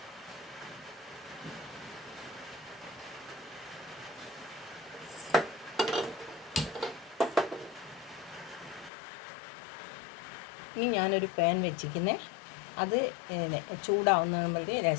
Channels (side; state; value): right; drops out; at 8.9 s